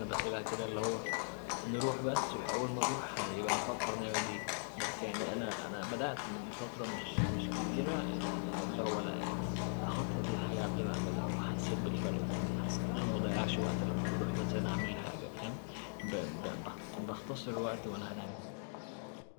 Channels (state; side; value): silent; right; digital silence